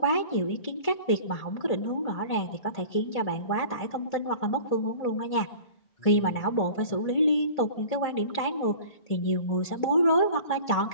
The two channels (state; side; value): late; right; 1.8 ms